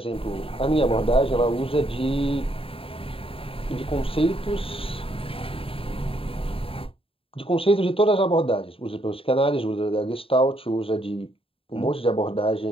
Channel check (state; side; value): late; right; 0.27 ms